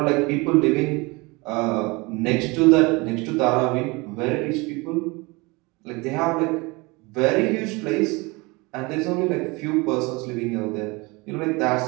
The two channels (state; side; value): quieter; left; 25.5 dB